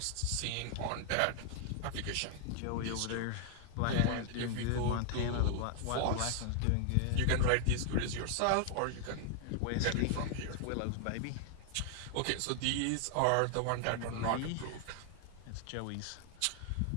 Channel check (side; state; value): both; different; correlation 0.00